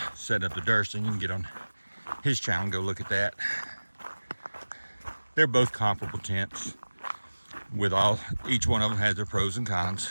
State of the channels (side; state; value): both; inverted; correlation -1.00